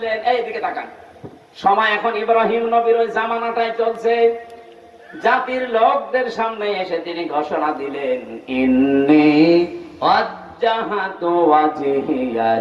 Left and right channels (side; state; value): both; identical; correlation 1.00